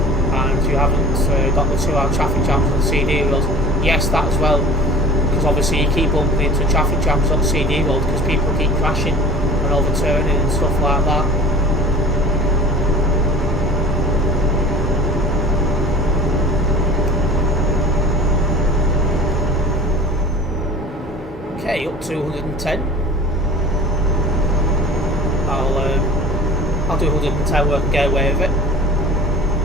And you haven't got the 2-hour traffic jams on the CD road. Yes, that as well. Because obviously you keep bumping into traffic jams on CD road because people keep crashing and overturning and stuff like that. Okay, up to 110. I'll do 110 work and get away with it.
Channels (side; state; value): both; normal; correlation 0.42